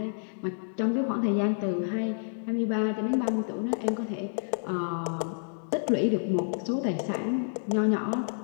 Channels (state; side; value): silent; right; digital silence